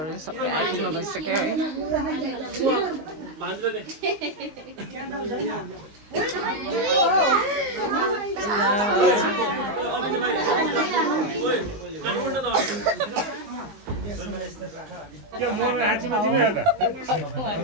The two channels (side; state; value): left; late; 20 ms